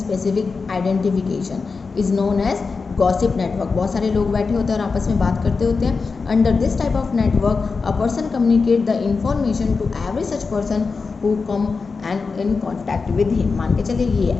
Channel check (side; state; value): right; quieter; 4.6 dB